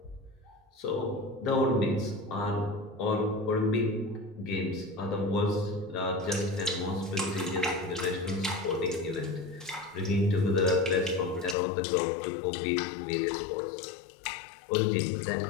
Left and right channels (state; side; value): drops out; right; at 11.6 s